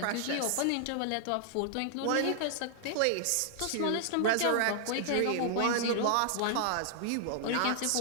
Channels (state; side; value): different; both; correlation 0.00